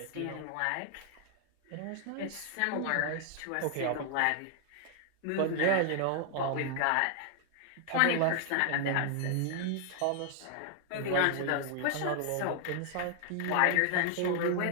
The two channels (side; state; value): both; different; correlation 0.00